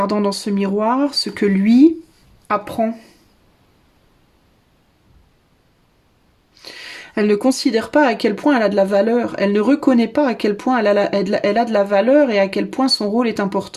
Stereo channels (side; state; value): both; identical; correlation 1.00